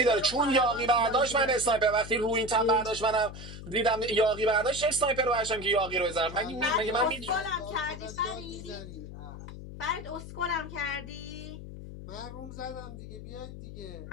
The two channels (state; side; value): noise; left; hum, 11 dB below the sound